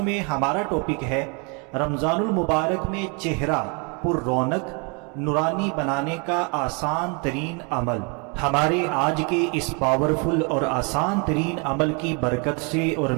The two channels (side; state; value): left; quieter; 33.2 dB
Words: میں ہمارا ٹاپک ہے رمضان المبارک میں چہرہ پر رونق نورانی بنانے کا آسان ترین عمل۔ ہمارے آج کے اس پاورفل اور آسان ترین عمل کی برکت سے اور